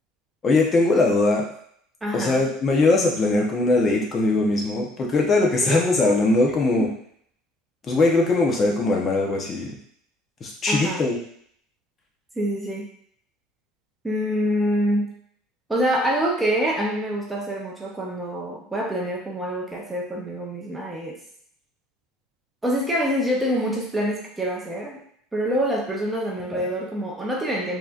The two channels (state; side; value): normal; both; correlation 0.63